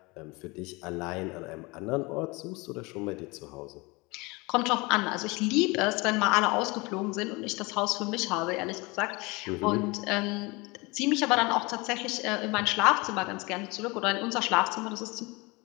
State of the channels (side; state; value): right; quieter; 25.3 dB